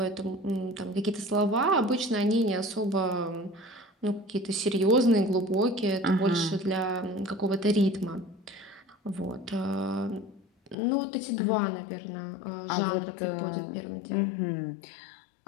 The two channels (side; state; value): right; drops out; at 10.8 s